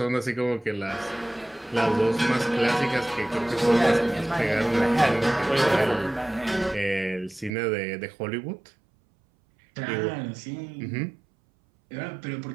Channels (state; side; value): drops out; left; at 7.5 s